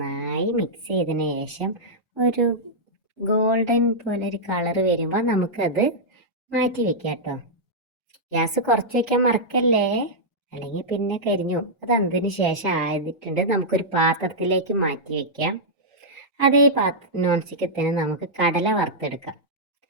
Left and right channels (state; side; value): normal; both; correlation -0.08